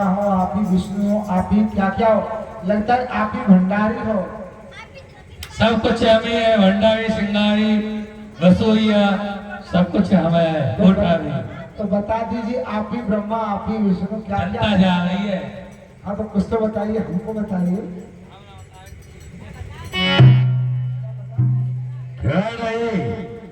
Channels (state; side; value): identical; both; correlation 1.00